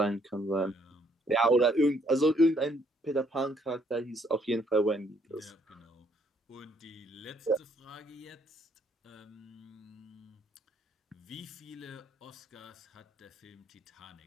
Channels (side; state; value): both; normal; correlation 0.68